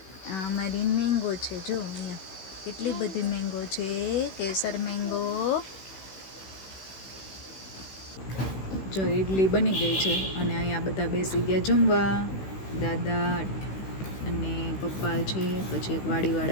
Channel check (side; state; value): right; late; 16 ms